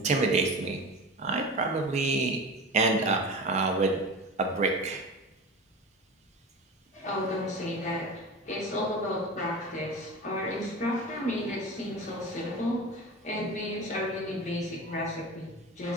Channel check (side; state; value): both; normal; correlation 0.31